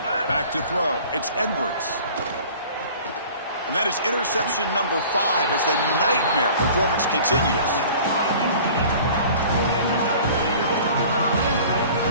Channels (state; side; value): inverted; both; correlation -0.46